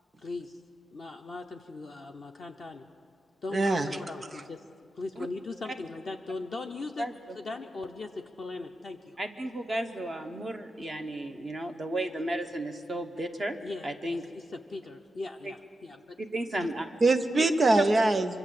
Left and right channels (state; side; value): normal; both; correlation 0.89